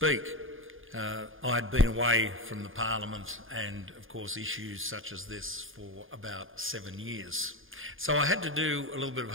I'd been away from the Parliament and, of course, issues such as this for about 7 years. So I had to do a little bit of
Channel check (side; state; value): left; late; 0.59 ms